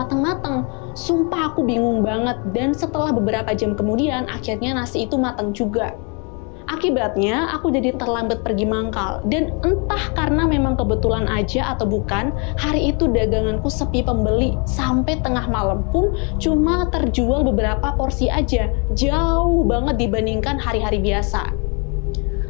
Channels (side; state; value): right; quieter; 34.4 dB